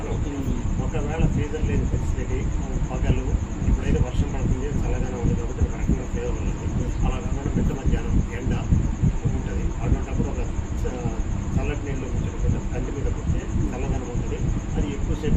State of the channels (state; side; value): identical; both; correlation 1.00